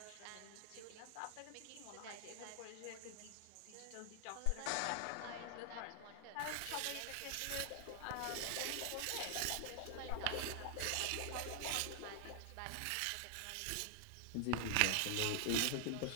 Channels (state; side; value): different; both; correlation 0.00